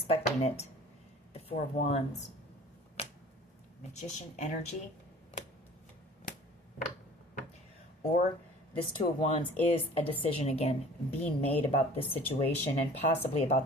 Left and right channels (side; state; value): both; normal; correlation 0.47